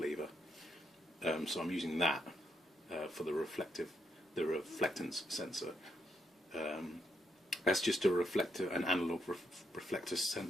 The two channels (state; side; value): normal; both; correlation 0.78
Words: so I'm using that for the reflectance sensor. That's just an analog reflector